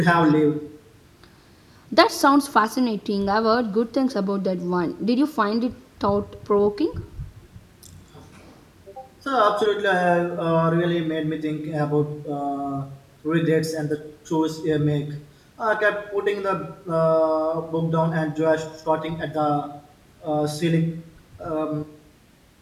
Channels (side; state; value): both; identical; correlation 1.00